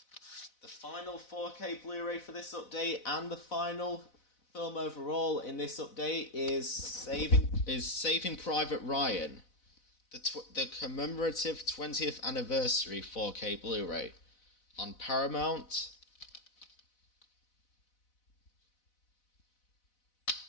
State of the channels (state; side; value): late; right; 4.0 ms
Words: The final 4K Blu-ray for this update and the final film overall in this update is Saving Private Ryan, the commemorative 20th anniversary 4K Blu-ray on Paramount.